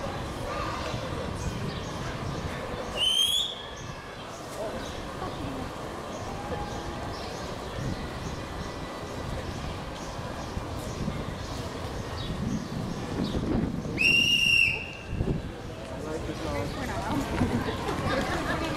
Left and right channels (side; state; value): both; identical; correlation 1.00